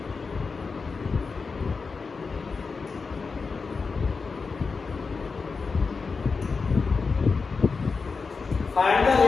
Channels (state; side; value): quieter; right; 4.7 dB